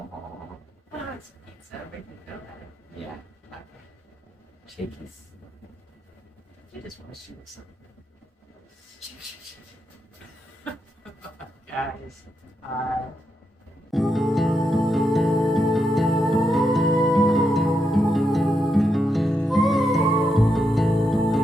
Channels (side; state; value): both; normal; correlation 0.83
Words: Oh, it's pizza. We can go there. yeah, Okay. shakies. You just want to shoot something. Guys,